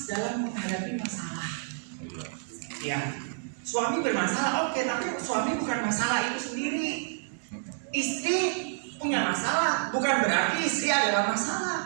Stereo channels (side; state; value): left; silent; digital silence